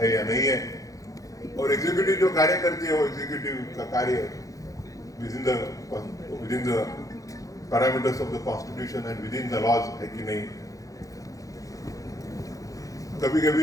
या नहीं है। और एग्जीक्यूटिव जो कार्य करती है वो एग्जीक्यूटिव का कार्य within the parameters of the constitution and within the laws है कि नहीं। कभी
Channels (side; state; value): right; late; 0.17 ms